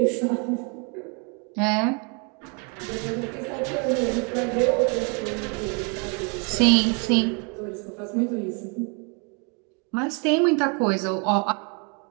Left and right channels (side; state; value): left; quieter; 35.3 dB